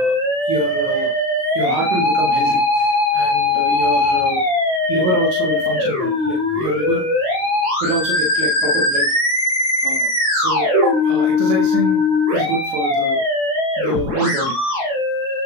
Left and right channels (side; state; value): left; late; 38 ms